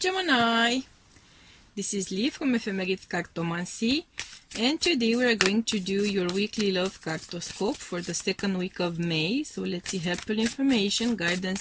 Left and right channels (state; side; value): identical; both; correlation 1.00